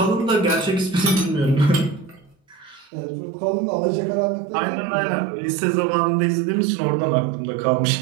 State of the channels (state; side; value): drops out; left; at 2.9 s